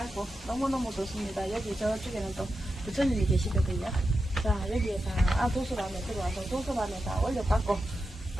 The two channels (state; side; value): normal; both; correlation 0.89